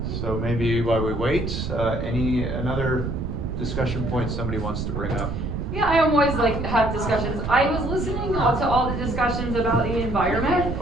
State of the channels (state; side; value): noise; right; rumble, 3 dB below the sound